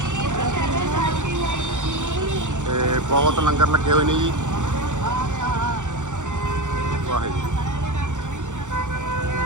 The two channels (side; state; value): left; late; 0.85 ms